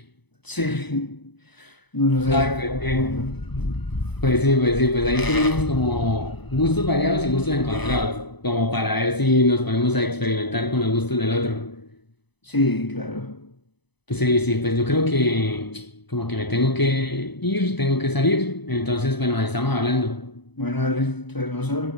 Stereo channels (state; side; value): late; right; 0.99 ms